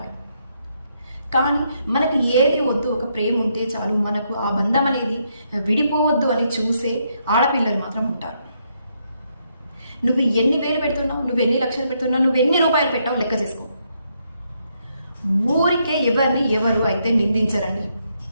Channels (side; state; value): both; inverted; correlation -0.76